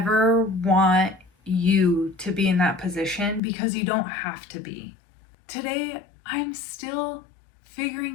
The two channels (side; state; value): right; drops out; at 3.4 s